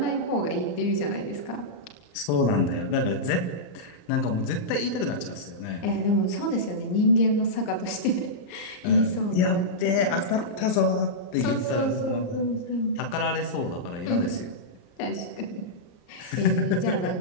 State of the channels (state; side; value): late; right; 34 ms